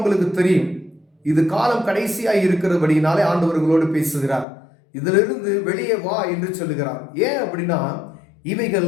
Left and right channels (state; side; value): drops out; right; at 4.5 s